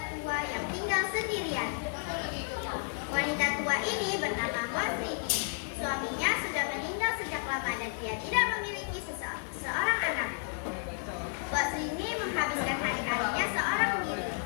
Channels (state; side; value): silent; right; 56 dB below the other